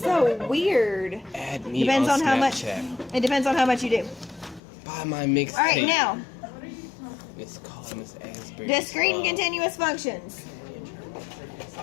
weird. Add me Depends on how much. Snapchat. It depends on how much you do. Buy my mixtape. All right, now It's called Miss Asbury. discrete and continuous functions.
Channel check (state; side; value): drops out; right; at 4.6 s